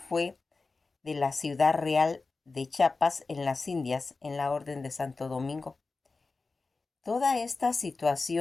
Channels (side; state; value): right; quieter; 3.9 dB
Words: de la ciudad real de Chiapas en las Indias, en la Orden de Santo Domingo. Toda esta